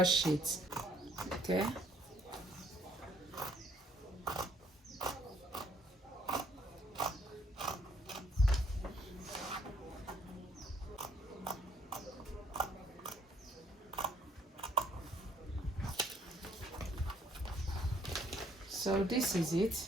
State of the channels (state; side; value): normal; both; correlation 0.65